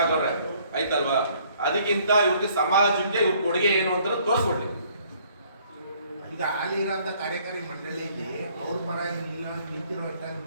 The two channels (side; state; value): both; inverted; correlation -0.62